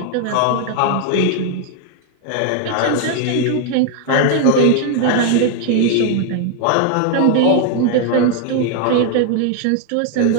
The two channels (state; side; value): different; both; correlation 0.00